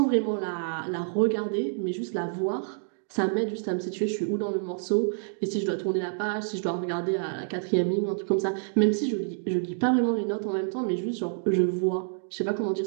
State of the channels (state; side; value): silent; left; digital silence